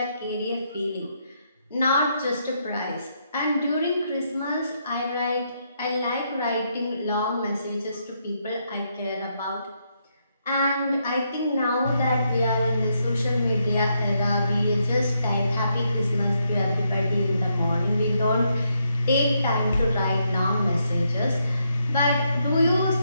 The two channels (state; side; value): inverted; both; correlation -0.78